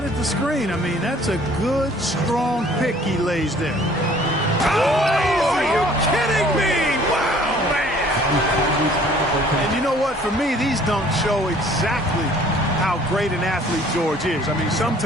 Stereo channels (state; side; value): normal; both; correlation 0.55